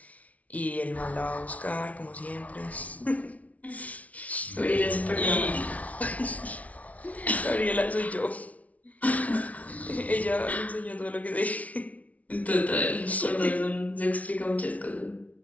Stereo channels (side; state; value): right; late; 0.069 ms